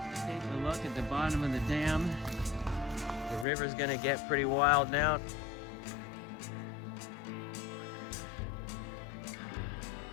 Taking a look at the bottom of the dam. The river's gonna get pretty wild now.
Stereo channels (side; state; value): right; drops out; at 3.5 s